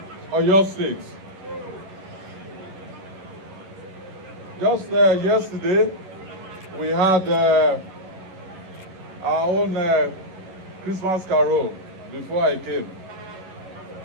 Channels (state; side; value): late; left; 11 ms